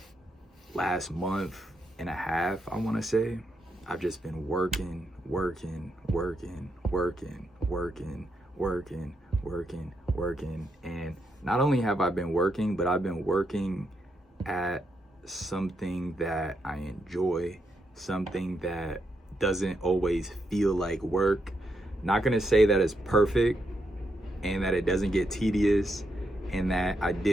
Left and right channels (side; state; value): both; normal; correlation 0.81